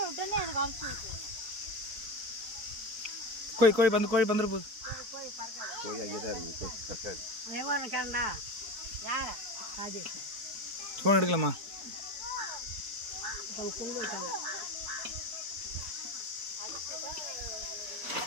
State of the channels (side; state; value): left; late; 4.5 ms